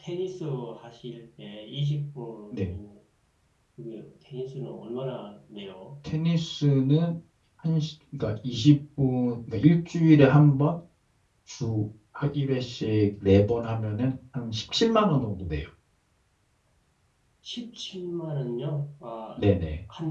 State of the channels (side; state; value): both; identical; correlation 1.00